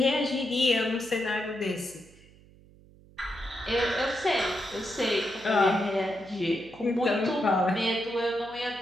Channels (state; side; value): noise; right; hum, 25 dB below the sound